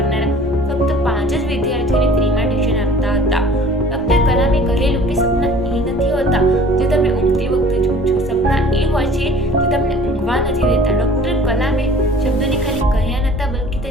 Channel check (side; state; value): both; normal; correlation 0.48